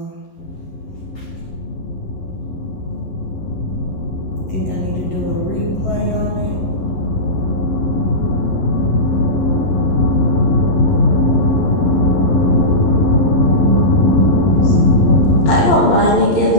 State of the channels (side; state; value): right; late; 11 ms